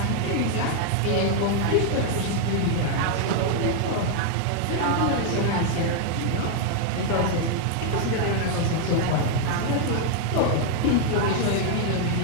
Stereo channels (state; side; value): different; both; correlation 0.00